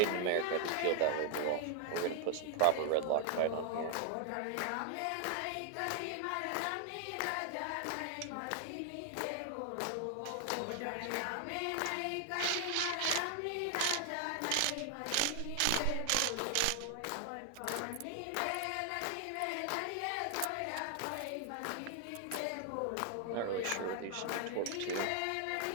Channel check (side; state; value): both; different; correlation 0.00